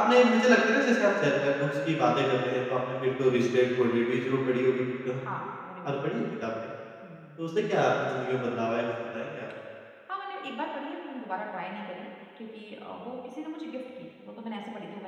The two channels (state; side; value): identical; both; correlation 1.00